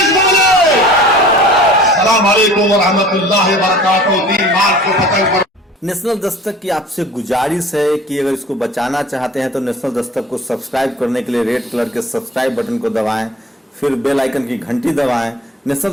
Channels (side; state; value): both; normal; correlation 0.46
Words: बोले। अस्सलाम वालेकुम व रहमतुल्लाहि व बरकातहू। 3 मार्च को पतंग पर नेशनल दस्तक की आपसे गुजारिश है कि अगर इसको बचाना चाहते हैं तो नेशनल दस्तक को सब्सक्राइब करने के लिए रेड कलर के सब्सक्राइब बटन को दबाएं, फिर बेल आइकन की घंटी दबाएं। नेशनल